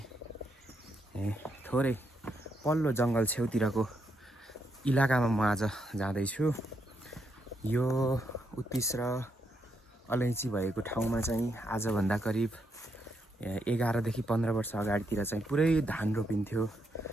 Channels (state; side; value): normal; both; correlation 0.79